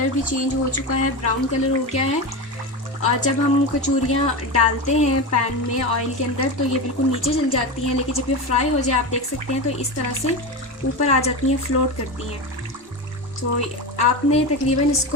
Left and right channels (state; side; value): normal; both; correlation 0.20